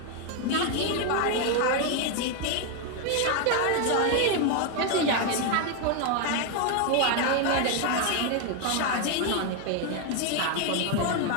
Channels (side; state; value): both; different; correlation 0.01